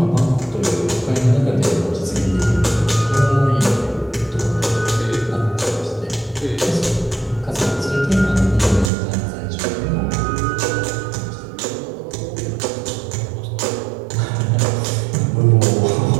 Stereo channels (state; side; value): drops out; left; at 8.9 s